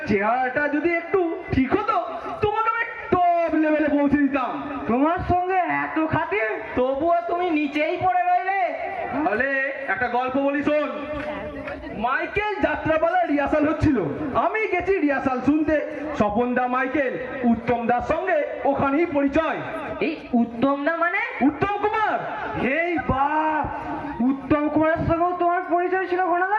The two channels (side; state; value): both; identical; correlation 1.00